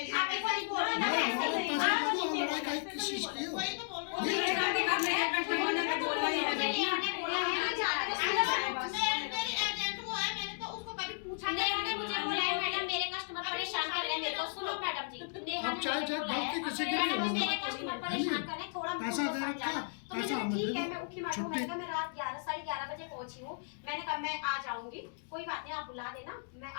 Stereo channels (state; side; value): silent; right; digital silence